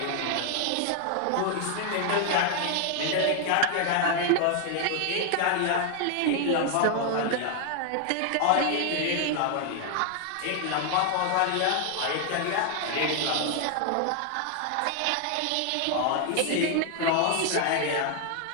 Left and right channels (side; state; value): both; different; correlation 0.00